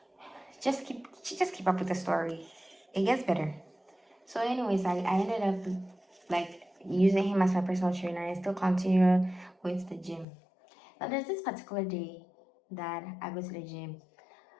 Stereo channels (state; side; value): drops out; right; at 10.2 s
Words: just keep up with the story. It gets better. So anyways, I ended up like using him as my personal trainer and still continue going to the gym. Now there's this particular day that I go to the gym.